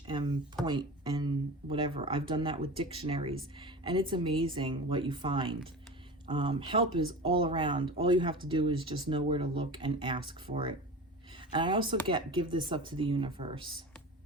and point and whatever. I've done that with dictionaries, and it's amazing what you find. Help is all around. All you have to do is just know where to look and ask for it. And I also give this up to the universe.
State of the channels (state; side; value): normal; both; correlation 0.31